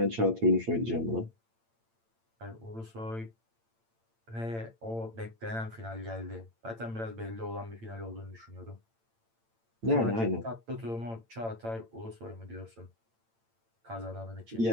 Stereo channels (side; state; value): left; late; 8.8 ms